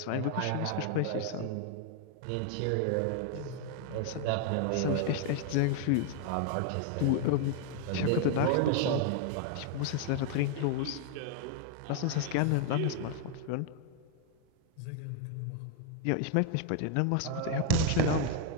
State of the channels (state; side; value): different; both; correlation 0.00